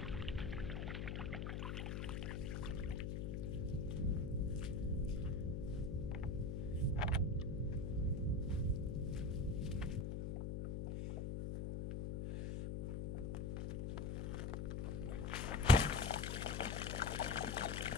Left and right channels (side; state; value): left; noise; hum, 2 dB below the sound